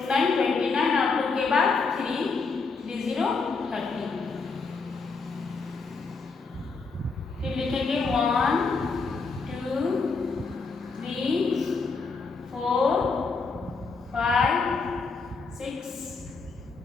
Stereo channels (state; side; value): quieter; right; 4.4 dB